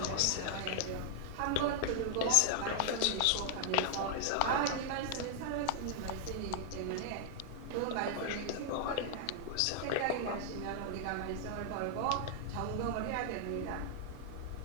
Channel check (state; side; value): different; both; correlation 0.00